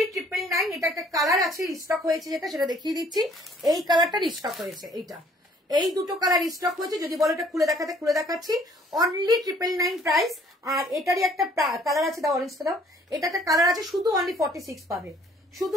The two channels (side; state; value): both; normal; correlation 0.59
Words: 999। এটা একটা কালার আছে স্টক হয়েছে, যেটা সেটা দেখিয়ে দিচ্ছি। এই কালারটা স্টক হয়েছে, এইটা, এই দুটো কালার স্টক হয়েছে। যদি বলো এটা খুলে দেখাতে, খুলে দেখাচ্ছি। Only 999 price. আর এটারই একটা কালার আছে, দাও অরেঞ্জটা দাও। এটা একটা কালার আছে, শুধু অনলি 46 পাবে, শুধু